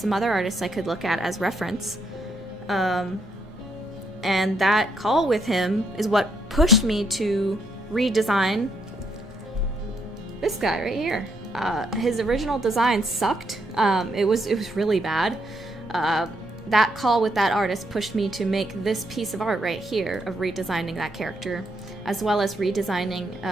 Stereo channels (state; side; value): normal; both; correlation 0.75